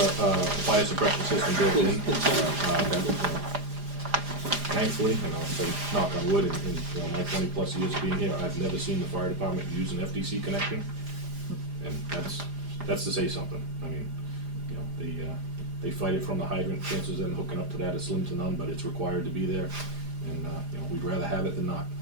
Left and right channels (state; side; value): late; left; 4.9 ms